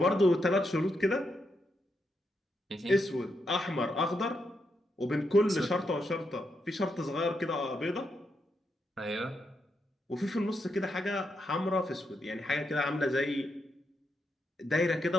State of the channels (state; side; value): normal; both; correlation 0.82